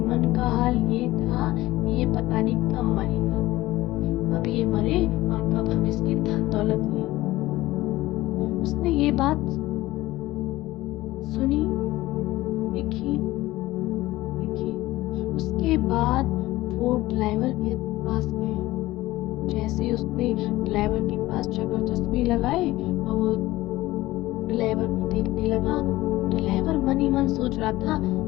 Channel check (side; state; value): right; quieter; 17.6 dB